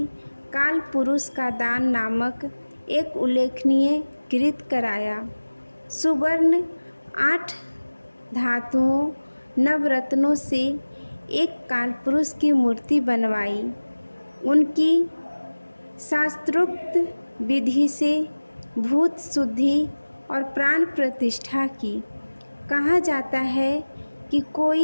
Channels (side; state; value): both; inverted; correlation -1.00